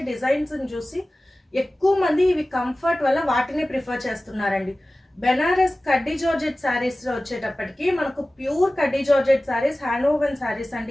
డిజైన్స్ని చూసి ఎక్కువ మంది ఇవి కంఫర్ట్ వల్ల వాటిని ప్రిఫర్ చేస్తున్నారండి. బెనారస్ కడ్డీ జార్జెట్ శారీస్ లో వచ్చేటప్పటికి మనకు ప్యూర్ కడ్డీ georgette saris, hand woven saris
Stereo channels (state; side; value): normal; both; correlation 0.97